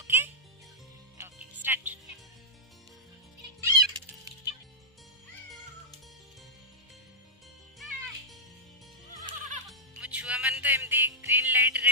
ଓକେ ଓକେ ଷ୍ଟାର୍ଟ। ମୋ ଛୁଆ ମାନେ ତ ଏମିତି ଗ୍ରୀନ୍ ଲାଇଟ୍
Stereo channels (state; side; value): normal; both; correlation -0.09